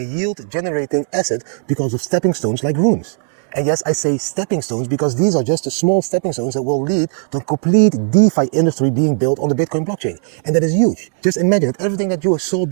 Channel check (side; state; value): left; silent; 68 dB below the other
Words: yield-generating asset because of stepping stones like runes. And yes, I say stepping stones because these are just the small stepping stones that will lead to a complete DeFi industry being built on the Bitcoin blockchain. And that is huge. Just imagine that everything that you saw